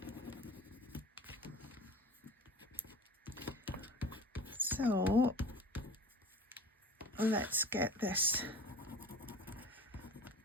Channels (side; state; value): both; normal; correlation 0.40